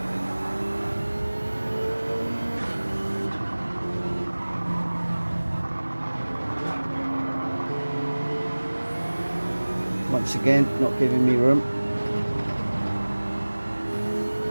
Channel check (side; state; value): both; inverted; correlation -1.00